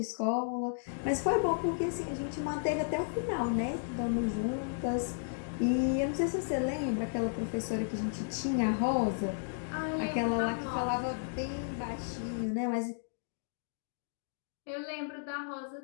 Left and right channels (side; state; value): right; silent; digital silence